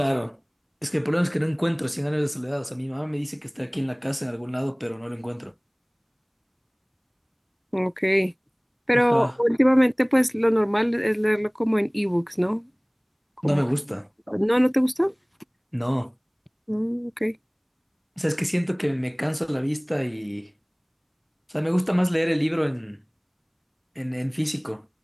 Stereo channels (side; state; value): both; identical; correlation 1.00